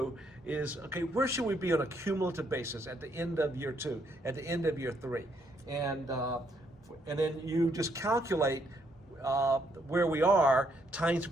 is, okay, where should we be on a cumulative basis at the end of year 2, at the end of year 3? And then you just calculate where we are times the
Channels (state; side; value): normal; both; correlation 0.72